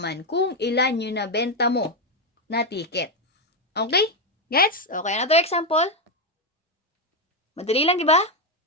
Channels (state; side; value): normal; both; correlation 0.05